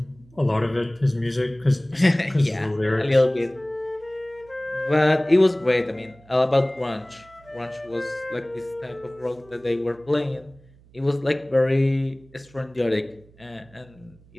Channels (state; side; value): noise; right; hum, 27 dB below the sound